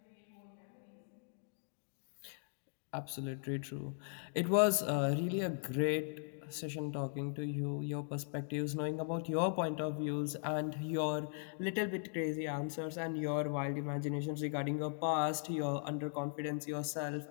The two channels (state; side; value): silent; right; digital silence